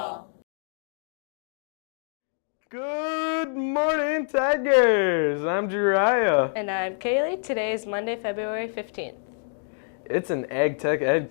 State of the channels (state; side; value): silent; right; digital silence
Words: Good morning, Tigers! I'm Jariah. And I'm Kaylee. Today is Monday, February 15th. It's an Ag Tech Ed